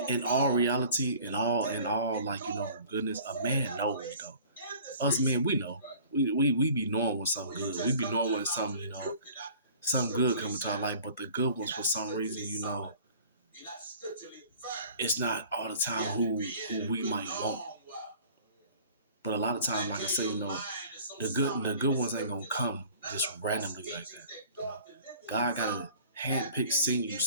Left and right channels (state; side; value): inverted; both; correlation -0.48